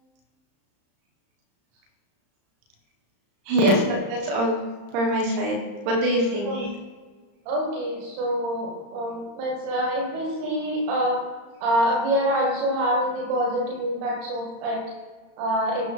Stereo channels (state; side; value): late; left; 35 ms